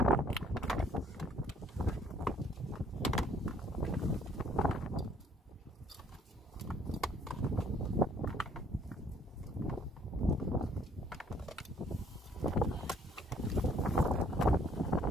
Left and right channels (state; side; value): normal; both; correlation 0.61